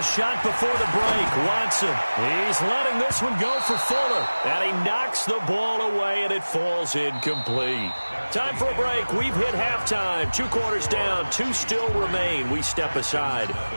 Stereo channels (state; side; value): inverted; both; correlation -1.00